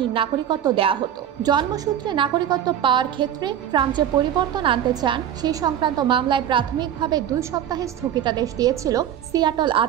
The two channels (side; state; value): left; quieter; 10.2 dB